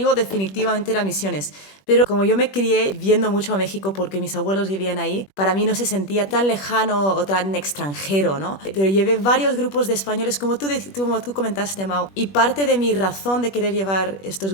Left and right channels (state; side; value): late; right; 21 ms